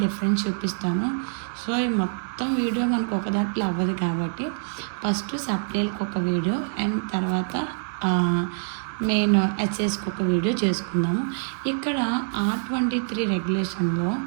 డిఫరెన్స్ చూపిస్తాను. సో ఈ మొత్తం వీడియో మనకు ఒక దాంట్లో అవ్వదు కాబట్టి ఫస్ట్ సప్లీలకు ఒక వీడియో, అండ్ తర్వాత మెయిన్ ఎస్ఎస్కి ఒక వీడియో చేసుకుందాము. ఇక్కడ R23 రెగ్యులేషన్లో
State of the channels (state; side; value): silent; left; digital silence